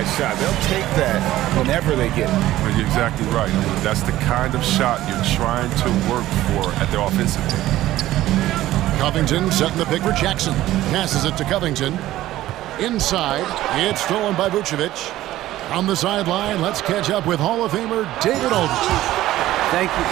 shot. They'll take that whenever they get it. Well, you're exactly right. I mean, that's the kind of shot you're trying to work for at the offensive end. Covington setting the pick for Jackson. Passes it to Covington. Inside, it's stolen by Vucevic. On the sideline, let's catch up with Hall of Famer David Aldridge. Thank you,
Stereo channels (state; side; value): quieter; left; 15.0 dB